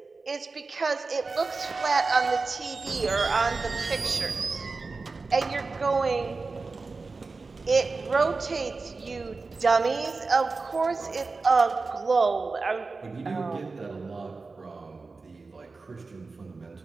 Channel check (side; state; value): left; quieter; 4.0 dB